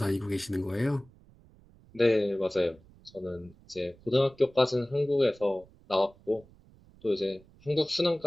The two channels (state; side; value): noise; right; rumble, 26 dB below the sound